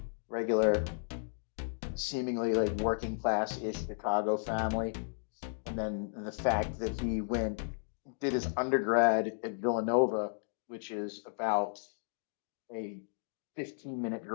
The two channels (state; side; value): silent; right; digital silence